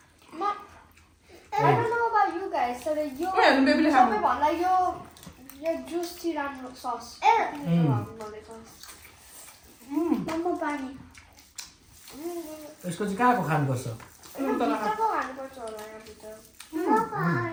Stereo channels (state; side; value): identical; both; correlation 1.00